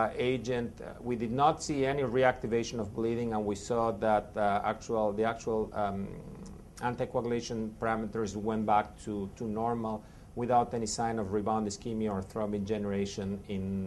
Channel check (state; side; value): identical; both; correlation 1.00